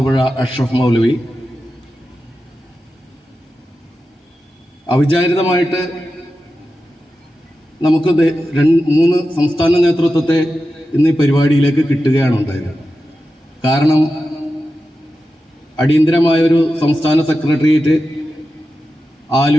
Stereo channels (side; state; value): both; normal; correlation 0.92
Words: അഷ്റഫ് മൗലവി, അവിചാരിതമായിട്ട് നമുക്ക് 3 സംസ്ഥാന നേതൃത്വത്തെ ഇന്ന് ഈ പരിപാടിയിലേക്ക് കിട്ടുകയാണ് ഉണ്ടായത്. കാരണം അടിയന്തരമായൊരു സംസ്ഥാന സെക്രട്ടേറിയറ്റ്